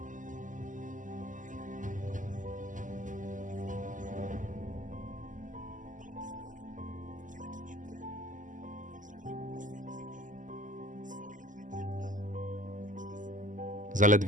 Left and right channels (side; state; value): left; late; 0.37 ms